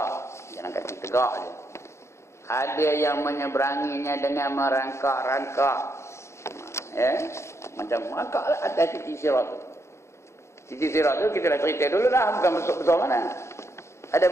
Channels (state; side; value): late; right; 0.13 ms